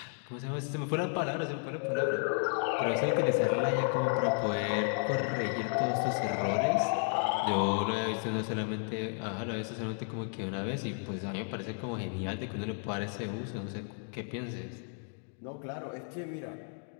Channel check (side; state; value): right; silent; 56 dB below the other